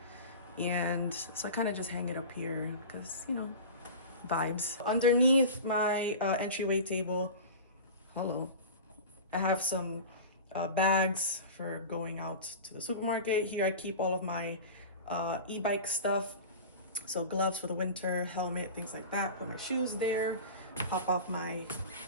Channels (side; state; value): both; inverted; correlation -0.33